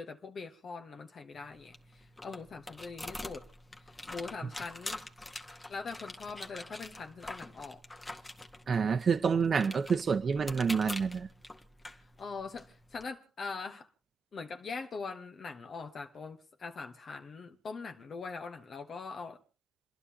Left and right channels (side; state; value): left; quieter; 3.4 dB